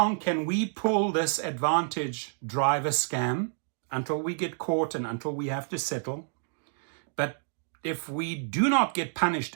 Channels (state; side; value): silent; left; digital silence